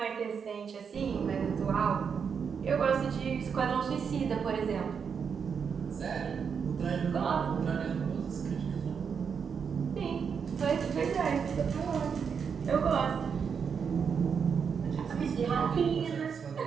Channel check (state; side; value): quieter; left; 6.5 dB